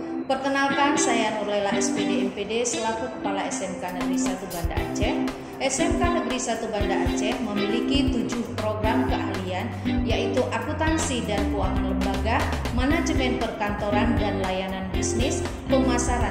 Perkenalkan, saya Nurlela SPD MPD selaku Kepala SMK Negeri 1 Banda Aceh. SMK Negeri 1 Banda Aceh memiliki 7 program keahlian, yaitu akuntansi dan keuangan lembaga, manajemen perkantoran dan layanan bisnis,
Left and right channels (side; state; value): both; identical; correlation 1.00